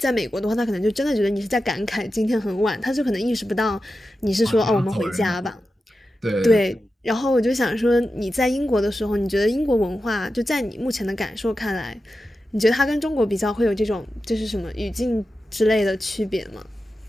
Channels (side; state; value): both; normal; correlation 0.91